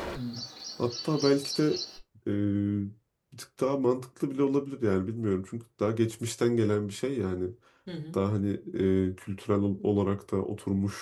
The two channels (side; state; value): both; identical; correlation 1.00